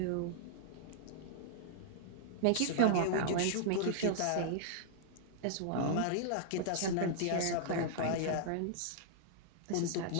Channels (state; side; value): different; both; correlation -0.02